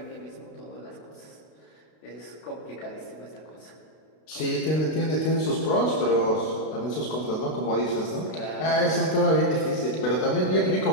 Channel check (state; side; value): late; right; 32 ms